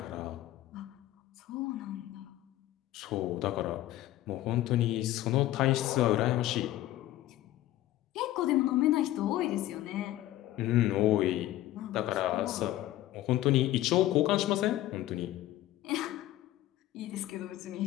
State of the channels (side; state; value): right; quieter; 14.7 dB